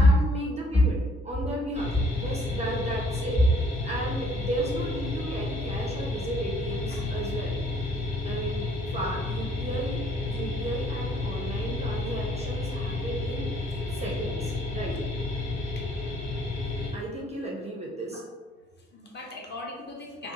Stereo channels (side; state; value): both; normal; correlation 0.62